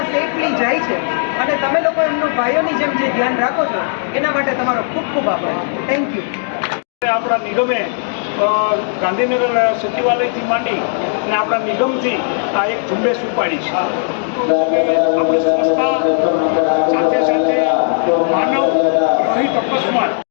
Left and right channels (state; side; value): silent; right; digital silence